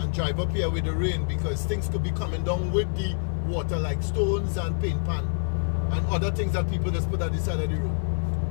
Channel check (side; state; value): right; silent; digital silence